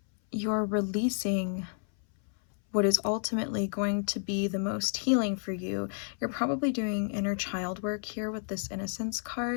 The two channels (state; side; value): silent; right; 57 dB below the other